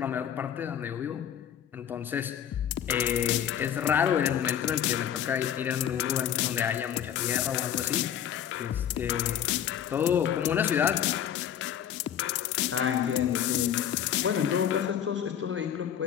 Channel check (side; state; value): right; quieter; 9.7 dB